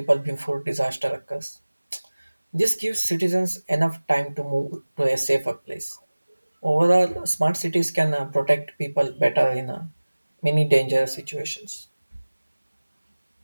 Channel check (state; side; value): inverted; both; correlation -1.00